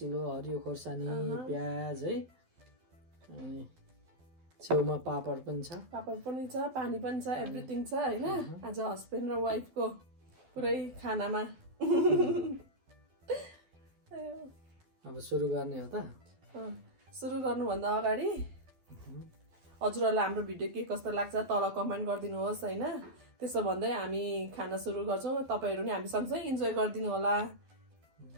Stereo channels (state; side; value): late; left; 12 ms